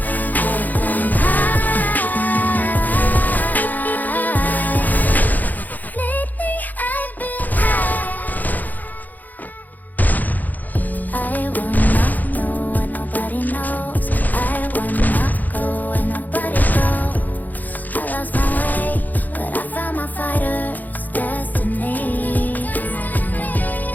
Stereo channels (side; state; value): right; late; 0.083 ms